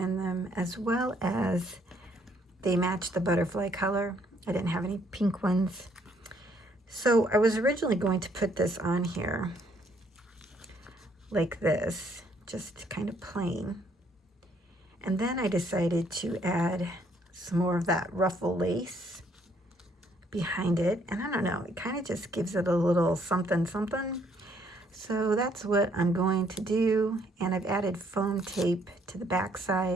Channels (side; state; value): both; normal; correlation 0.67